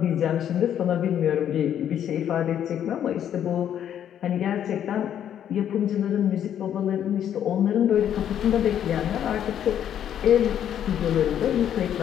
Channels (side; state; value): right; quieter; 9.9 dB